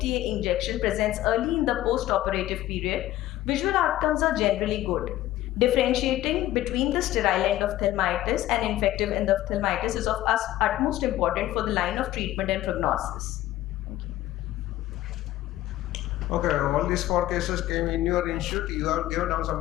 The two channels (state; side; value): quieter; right; 14.7 dB